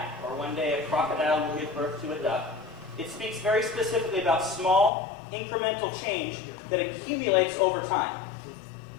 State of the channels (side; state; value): right; drops out; at 4.9 s